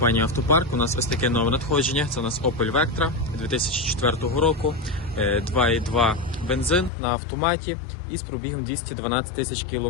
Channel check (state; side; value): drops out; right; at 6.9 s